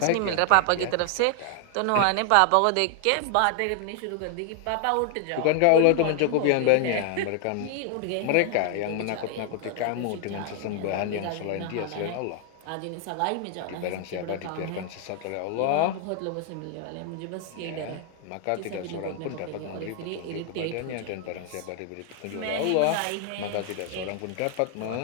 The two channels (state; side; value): different; both; correlation 0.00